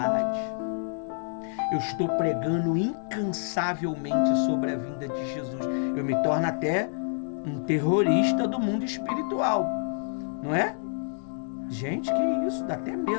Eu estou pregando incansavelmente sobre a vinda de Jesus. Eu me torno até um terrorista do mundo espiritual, não é? Gente, que isso, dá até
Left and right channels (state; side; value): silent; right; digital silence